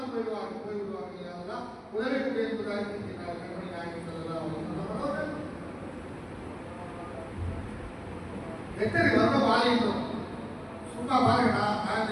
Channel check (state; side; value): identical; both; correlation 1.00